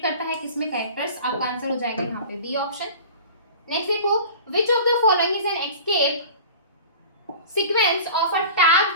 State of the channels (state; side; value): inverted; both; correlation -0.40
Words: करता है किसमें, कैरेक्टर्स, आपका आंसर हो जाएगा यहाँ पे बी ऑप्शन। नेक्स्ट देखो, which of the following is an escape sequence of a tag